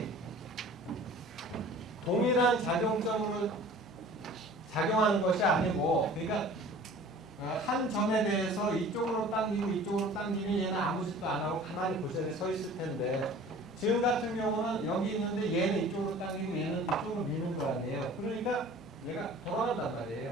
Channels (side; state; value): both; normal; correlation 0.45